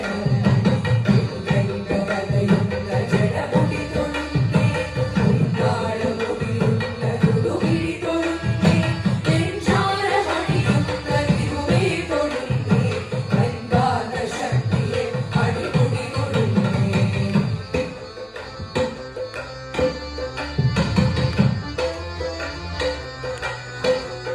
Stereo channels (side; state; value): both; identical; correlation 1.00